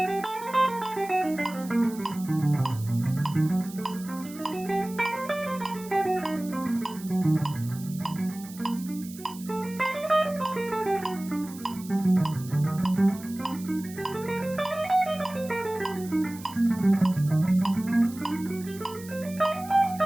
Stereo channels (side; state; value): right; noise; hiss, 17 dB below the sound